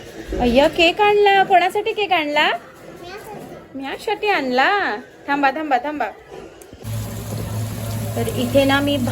अय्या, केक आणला. कोणासाठी केक आणला? म्यासाठी आणला. थांबा. तर इथे ना मी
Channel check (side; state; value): both; identical; correlation 1.00